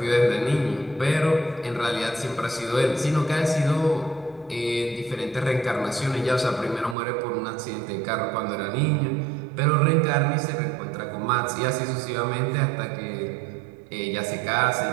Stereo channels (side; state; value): left; drops out; at 7.0 s